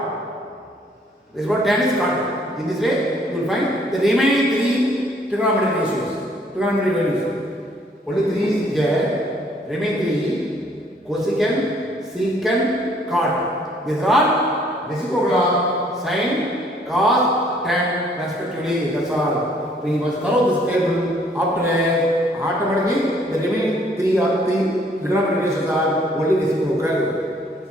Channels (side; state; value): both; normal; correlation 0.62